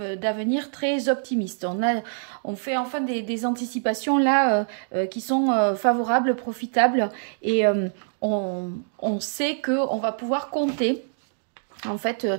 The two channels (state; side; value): silent; left; digital silence